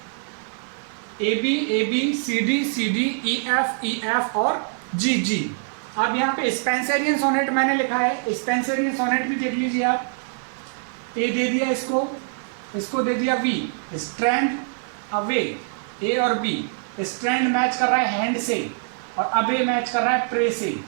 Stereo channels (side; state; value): left; silent; 57 dB below the other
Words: C D E F और जी जी। अब यहाँ पे स्पेंसरियन सोनेट मैंने लिखा है, स्पेंसरियन सोनेट भी देख लीजिए आप। ए दे दिया इसको दे दिया वी। स्ट्रैंड अवे, ए और बी। स्ट्रैंड मैच कर रहा है हैंड से और अबे मैच कर रहा है प्रे से।